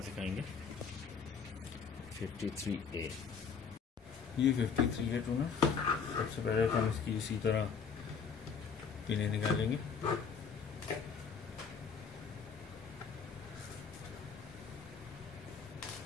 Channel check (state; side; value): quieter; right; 6.1 dB